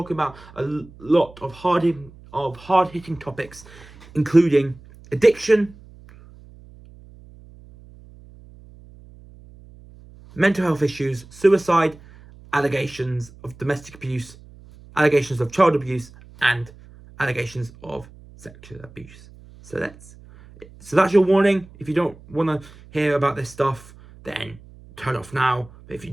about a lot of hard-hitting topics, including addiction, mental health issues, suicide, allegations of domestic abuse, allegations of child abuse, and allegations of sexual abuse. So that's your warning. If you don't want to hear about this stuff, then turn off now. But if you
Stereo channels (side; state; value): right; noise; hum, 22 dB below the sound